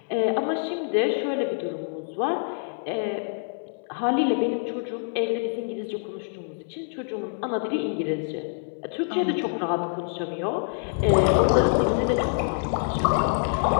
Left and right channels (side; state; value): right; silent; digital silence